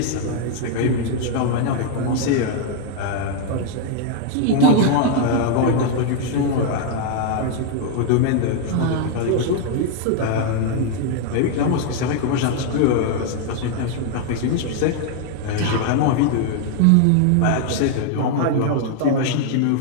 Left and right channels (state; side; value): different; both; correlation 0.00